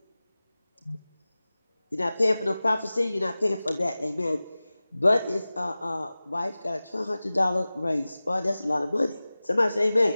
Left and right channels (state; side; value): inverted; both; correlation -0.97